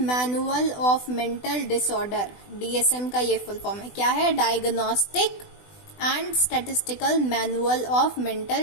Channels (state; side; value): late; right; 20 ms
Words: of mental disorder. DSM का ये फुल फॉर्म है, क्या है? Diagnostic and statistical manual of